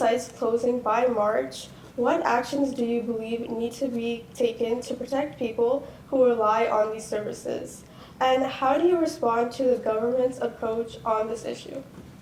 closing by March, what actions do you believe need to be taken to protect people who rely on these services? And how do you respond to the government's approach on this issue?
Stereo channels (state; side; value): identical; both; correlation 1.00